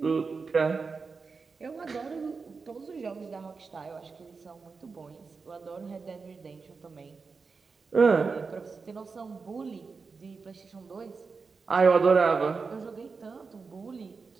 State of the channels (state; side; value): quieter; left; 4.7 dB